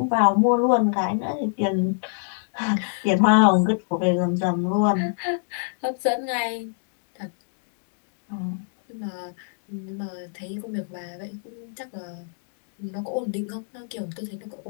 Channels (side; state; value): right; silent; digital silence